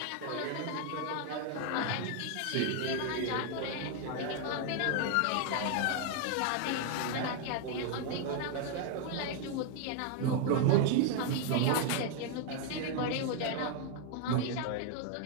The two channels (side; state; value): both; different; correlation 0.00